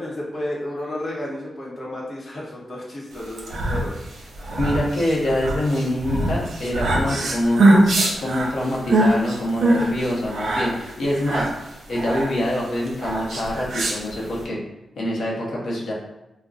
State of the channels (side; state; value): both; normal; correlation 0.86